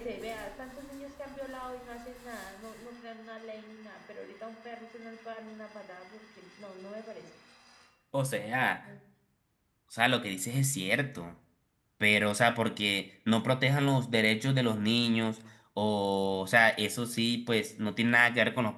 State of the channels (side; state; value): both; identical; correlation 1.00